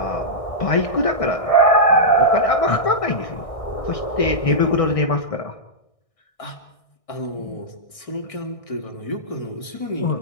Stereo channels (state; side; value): late; right; 1.6 ms